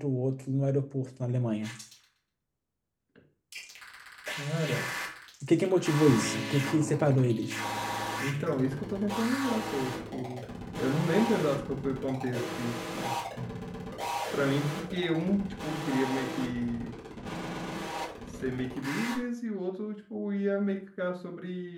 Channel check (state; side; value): identical; both; correlation 1.00